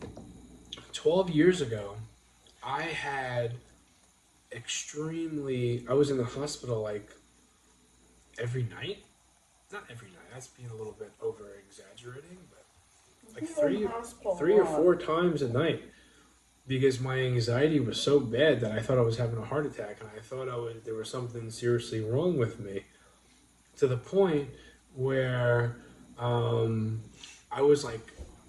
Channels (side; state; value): both; identical; correlation 1.00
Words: 12 years ago, I had I was in the hospital like every night. Not every night. That's being a little bit over exaggerating, but like three or four times a night because my anxiety was so bad that I thought I was having a heart attack and I thought there was something seriously wrong with me, to the point where I was like,